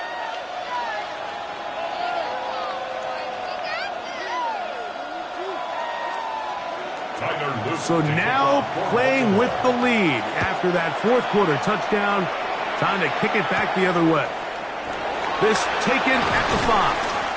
So now playing with the lead after that 4th quarter touchdown. Time to kick it back the other way. This taken at the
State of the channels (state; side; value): identical; both; correlation 1.00